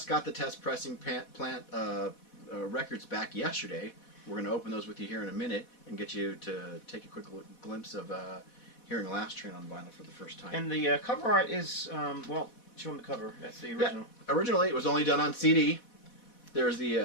got the test pressing plant records back yesterday. We're going to open those with you here in a minute and get you to take a quick glimpse of hearing Last Train on vinyl for the first time. And the cover art is, well, show them the cover. That's the original. Yeah. Originally, it was only done on CD. There's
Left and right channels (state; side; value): late; right; 4.1 ms